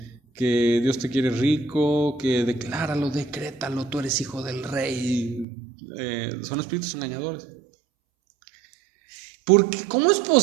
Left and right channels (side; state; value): left; drops out; at 5.5 s